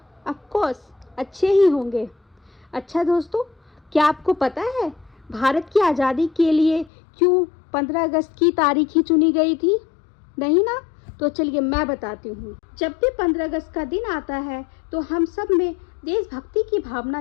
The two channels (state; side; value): drops out; right; at 6.9 s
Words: ऑफ कोर्स अच्छे ही होंगे। अच्छा दोस्तों, क्या आपको पता है भारत की आज़ादी के लिए क्यों 15 अगस्त की तारीख ही चुनी गई थी? नहीं ना? तो चलिए मैं बताती हूँ। जब भी 15 अगस्त का दिन आता है तो हम सब में देशभक्ति की भावना